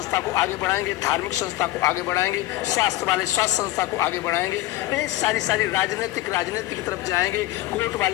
को आगे बढ़ाएंगे, धार्मिक संस्था को आगे बढ़ाएंगे, स्वास्थ्य वाले स्वास्थ्य संस्था को आगे बढ़ाएंगे, सारी राजनीति की तरफ जाएंगे, कोर्ट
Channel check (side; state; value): right; quieter; 16.2 dB